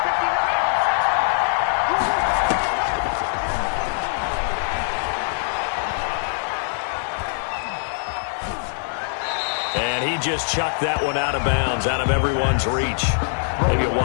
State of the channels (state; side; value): silent; right; digital silence